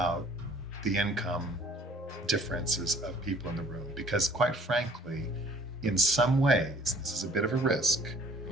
the income differences of people in the room. Because quite frankly, in some ways, this is a bit of a risk.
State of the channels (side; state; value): both; normal; correlation 0.56